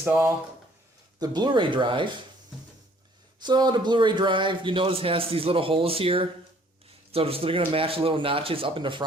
the Blu-ray drive. So the Blu-ray drive, you notice, has these little holes here. So they're going to match the little notches up in the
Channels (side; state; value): both; normal; correlation 0.59